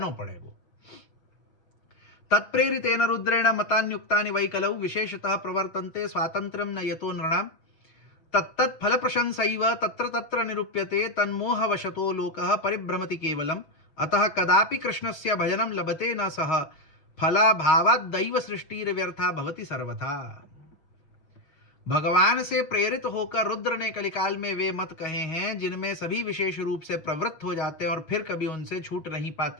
पड़ेगो। तत्प्रेरितेन रुद्रेण मतान्युक्तानि वै कलौ विशेषतः प्रवर्तन्ते स्वातंत्र्यं न यतो नृणां तत्तत् फल प्रशंसैव तत्र तत्र निरूप्यते तन्मोहवशतो लोकः परिभ्रमति केवलम् अतः कदापि कृष्णस्य भजनं लभते न सह फलाभावात् दैव सृष्टिर्व्यर्था भवति सर्वथा। भगवान से प्रेरित होकर रुद्र ने कलिकाल में वे मत कहे हैं जिनमें सभी विशेष रूप से प्रवृत्त हो जाते हैं और फिर कभी उनसे छूट नहीं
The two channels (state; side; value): late; right; 6.5 ms